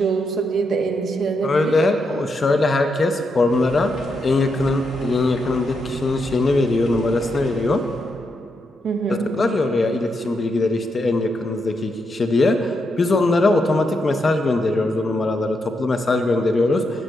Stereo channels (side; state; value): both; normal; correlation 0.82